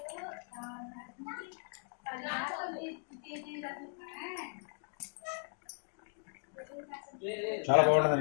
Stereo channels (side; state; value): right; silent; 53 dB below the other